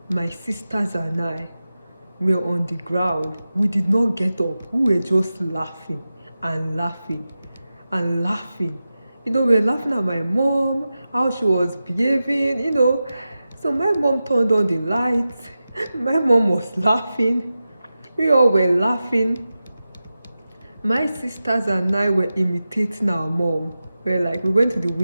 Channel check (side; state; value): both; inverted; correlation -0.93